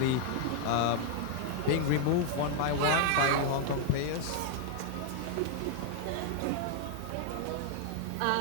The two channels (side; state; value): both; different; correlation 0.00